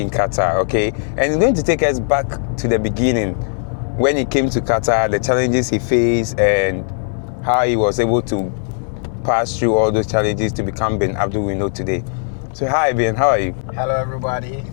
in Qatar, okay? And he's going to take us back to the beginning, when he came to Qatar, the challenges he faced, and how he was able to pass through all those challenges to become Bin Abdul we know today. So hi Bin, how are you? Hello everybody.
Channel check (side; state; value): right; silent; digital silence